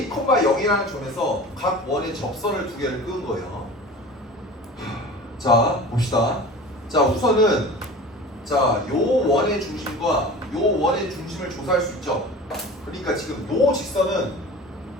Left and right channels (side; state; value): both; normal; correlation 0.38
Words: 0이라는 점에서 각 원의 접선을 두 개를 끄은 거예요. 자, 봅시다. 자, 우선은 자, 요 원의 중심과 요 원의 중심을 조사할 수 있죠. 그러니까 지금 요 직선은